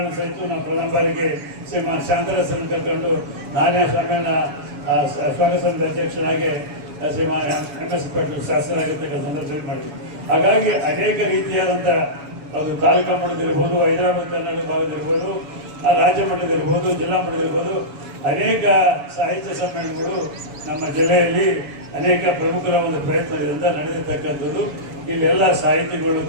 ಸಹಿತ ನಾವು ಪ್ರಥಮ ಬಾರಿಗೆ ಶ್ರೀಮಾನ್ ಶಾಂತರಸನ್ನು ಕರ್ಕೊಂಡು ನಾನೇ ಸಮ್ಮೇಳನ ಸ್ವಾಗತ ಸಮಿತಿ ಅಧ್ಯಕ್ಷರಾಗಿ ಶ್ರೀಮಾನ್ ಎಂ.ಎಸ್. ಪಾಟೀಲ್ ಶಾಸಕರಾಗಿರ್ತಕ್ಕಂಥ ಸಂದರ್ಭದಲ್ಲಿ ಮಾಡಿದ್ವಿ. ಹಾಗಾಗಿ ಅನೇಕ ರೀತಿಯಾದಂಥ ಅದು ತಾಲೂಕು ಮಟ್ಟದಿರ್ಬೋದು, ಹೈದರಾಬಾದ್ ಕರ್ನಾಟಕ ಭಾಗದಿರ್ಬೋದು, ರಾಜ್ಯ ಮಟ್ಟದಿರ್ಬೋದು, ಜಿಲ್ಲಾ ಮಟ್ಟದಿರ್ಬೋದು, ಅನೇಕ ಸಾಹಿತ್ಯ ಸಮ್ಮೇಳನಗಳು ನಮ್ಮ ಜಿಲ್ಲೆಯಲ್ಲಿ ಅನೇಕ ಪ್ರಮುಖರ ಒಂದು ಪ್ರಯತ್ನದಿಂದ ನಡೆದಿರ್ತಕ್ಕಂಥದ್ದು. ಇಲ್ಲೆಲ್ಲ ಸಾಹಿತಿಗಳು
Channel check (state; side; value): late; left; 7.1 ms